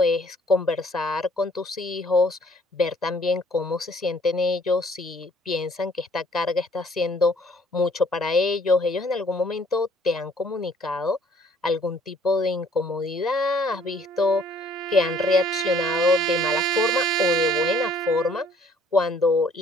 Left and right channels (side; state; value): both; normal; correlation 0.59